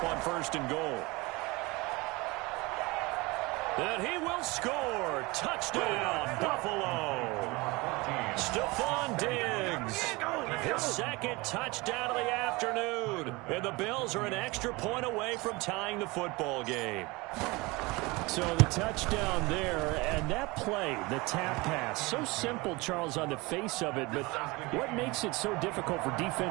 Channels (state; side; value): quieter; left; 23.9 dB